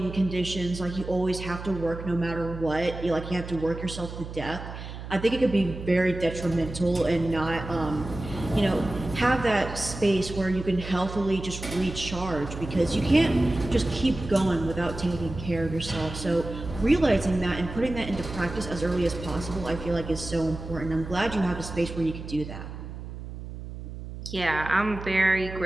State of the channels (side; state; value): right; noise; hum, 10 dB below the sound